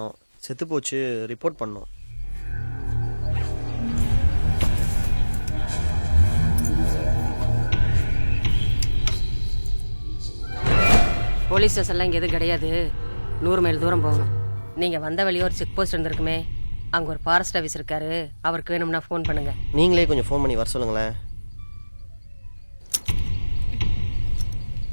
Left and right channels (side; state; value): both; inverted; correlation -1.00